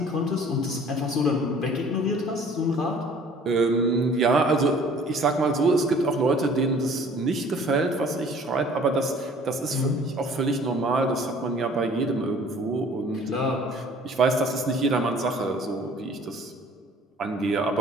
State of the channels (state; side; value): normal; both; correlation 0.52